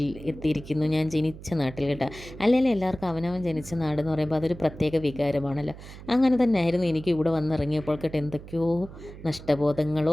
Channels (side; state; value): right; noise; hum, 15 dB below the sound